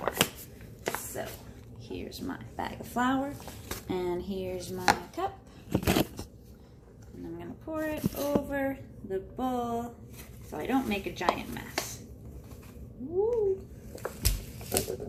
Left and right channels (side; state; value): both; identical; correlation 1.00